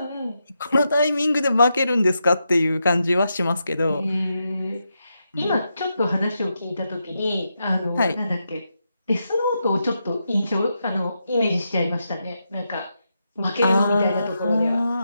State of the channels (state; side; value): inverted; both; correlation -0.85